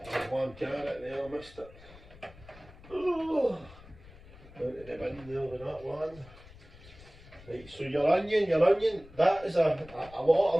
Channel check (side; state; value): left; noise; rumble, 20 dB below the sound